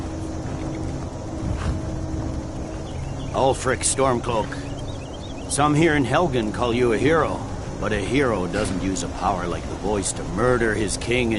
Ulfric Stormcloak. Some here in Helgen call you a hero, but a hero doesn't use a power like the voice to murder his king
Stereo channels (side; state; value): both; identical; correlation 1.00